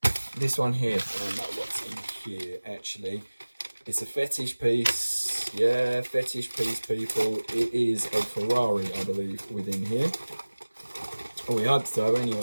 this one here. I don't know what's in here actually. It's a fetish piece. Yeah, fetish piece, people. It is a Ferrari, I believe, within here. Oh, we hope so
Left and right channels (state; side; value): inverted; both; correlation -1.00